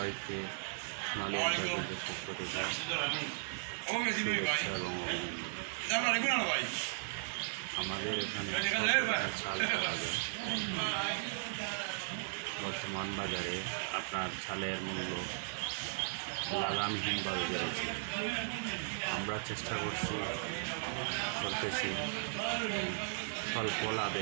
সোনালী এন্টারপ্রাইজের পক্ষ থেকে শুভেচ্ছা এবং অভিনন্দন। আমাদের এখানে চাল পাওয়া যায়। বর্তমান বাজারে আপনার চালের মূল্য লাগামহীনভাবে বেড়েছে। আমরা চেষ্টা করতেছি স্বল্প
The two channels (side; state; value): left; silent; digital silence